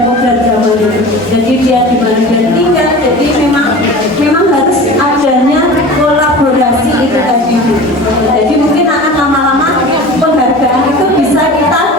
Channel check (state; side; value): normal; both; correlation 0.36